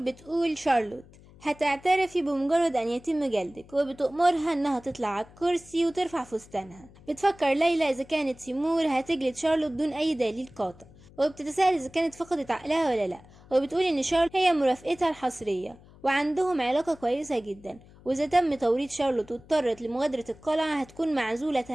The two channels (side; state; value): left; noise; hum, 23 dB below the sound